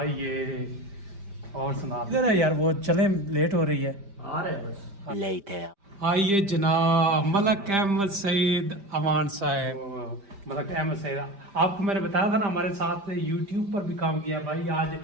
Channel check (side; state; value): left; late; 5.1 ms